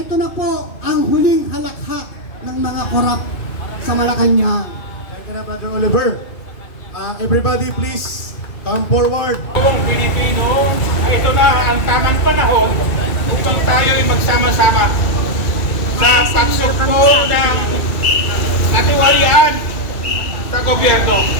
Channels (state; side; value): late; right; 2.3 ms